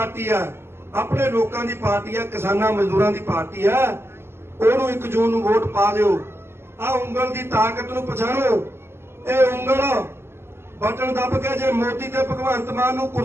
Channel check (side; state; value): left; late; 0.12 ms